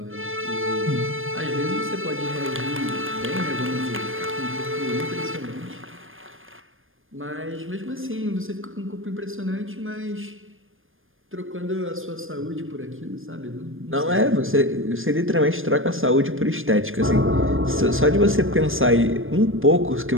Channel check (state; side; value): late; left; 0.59 ms